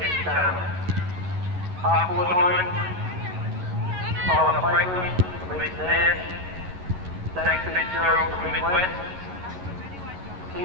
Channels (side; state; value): left; late; 11 ms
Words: Half forward line, Tyler Franklin from Eastern Air, Zach Fitzgerald from Midwest,